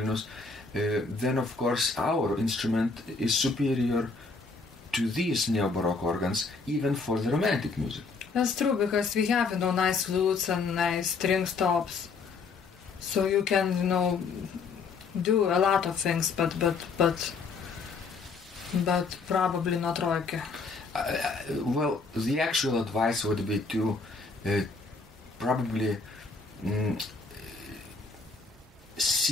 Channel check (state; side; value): quieter; right; 4.4 dB